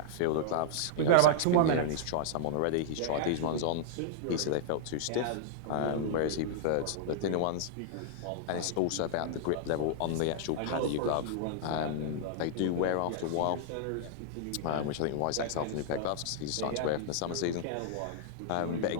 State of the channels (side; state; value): both; different; correlation -0.01